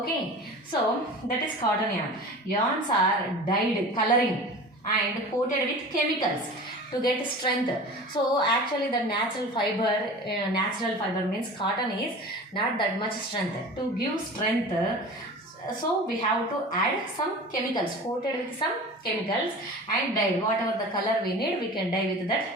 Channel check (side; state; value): both; normal; correlation 0.37